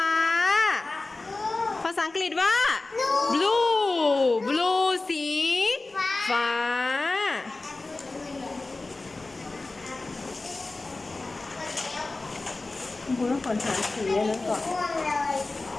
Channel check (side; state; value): right; quieter; 3.3 dB